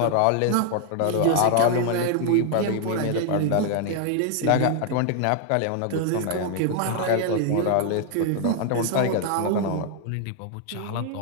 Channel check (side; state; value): both; different; correlation 0.00